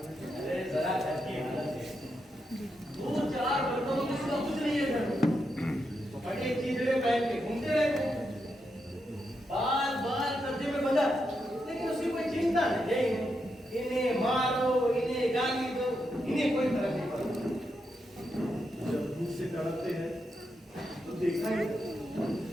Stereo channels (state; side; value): normal; both; correlation 0.84